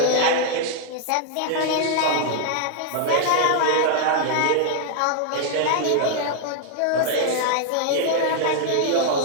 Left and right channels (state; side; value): different; both; correlation -0.01